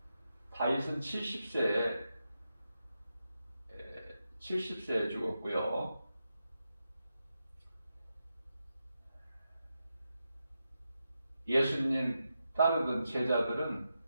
70세에 죽었고요. 예수님 따르던 제자들은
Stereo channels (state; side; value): inverted; both; correlation -0.88